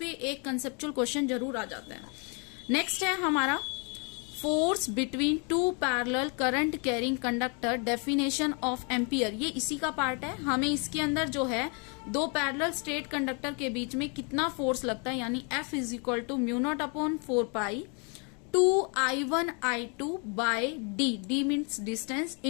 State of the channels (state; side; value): quieter; right; 35.3 dB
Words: एक कंसेप्चुअल क्वेश्चन जरूर आ जाता है। नेक्स्ट है हमारा force between two parallel current carrying conductor, definition of ampere, ये इसी का पार्ट है। हमें इसके अंदर जो है दो पैरेलल स्ट्रेट कंडक्टर के बीच में कितना फोर्स लगता है, यानी F is equal to μ0/4π 2I1I2 by D means distance